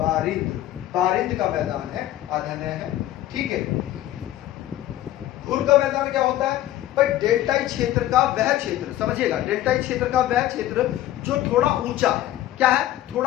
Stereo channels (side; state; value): right; quieter; 13.9 dB